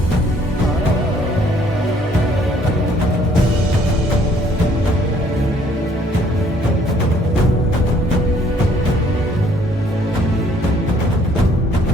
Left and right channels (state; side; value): normal; both; correlation 0.62